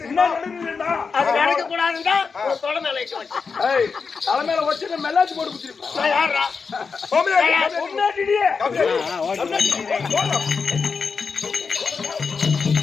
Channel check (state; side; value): quieter; right; 5.2 dB